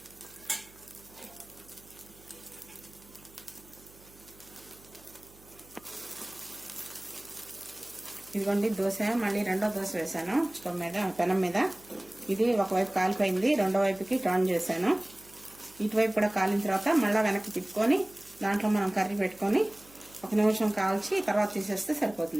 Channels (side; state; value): right; noise; hum, 25 dB below the sound